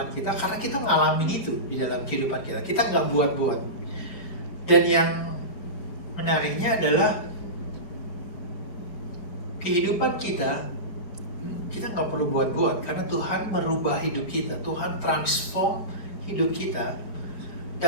kita karena kita ngalamin itu di dalam kehidupan kita. Kita nggak buat-buat. Dan yang menariknya adalah kehidupan kita nggak perlu buat-buat karena Tuhan merubah hidup kita, Tuhan transform hidup kita.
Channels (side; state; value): right; late; 4.9 ms